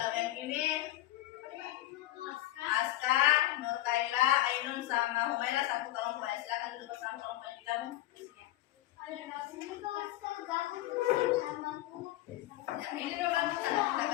yang ini Aska, Nur Kaila, Ainun sama Humaira, satu kelompok ya. Silakan duduk bersama kelompok yang digabung. Ya, ini dulu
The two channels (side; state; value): right; quieter; 15.6 dB